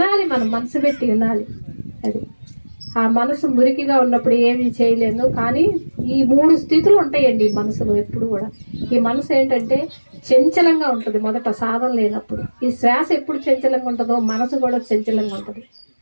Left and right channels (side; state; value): both; inverted; correlation -1.00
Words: మనం మనసు పెట్టి వినాలి. అది ఆ మనసు మురికిగా ఉన్నప్పుడు ఏమీ చేయలేను. కానీ ఈ 3 స్థితులు ఉంటాయండి ఈ మనసులో ఎప్పుడు కూడా. ఈ మనసు ఏంటంటే చంచలంగా ఉంటుంది మొదట సాధన లేనప్పుడు. ఈ శ్వాస ఎప్పుడు చంచలంగా ఉంటుందో మనసు కూడా చంచలంగా ఉంటుంది.